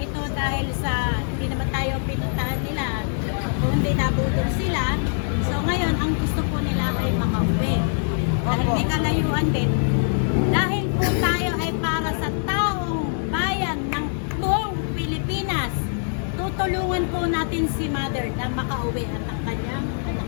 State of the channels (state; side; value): silent; right; digital silence